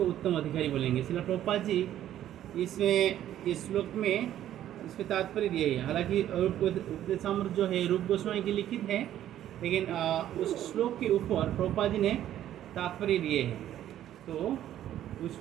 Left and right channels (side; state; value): left; quieter; 11.9 dB